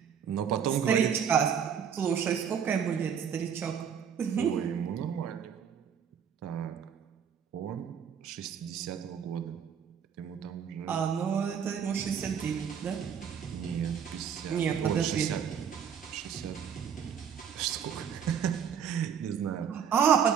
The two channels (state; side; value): quieter; left; 7.8 dB